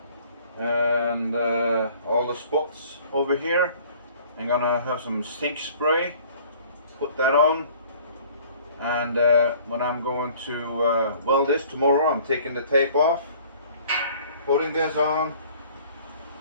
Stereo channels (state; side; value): inverted; both; correlation -0.52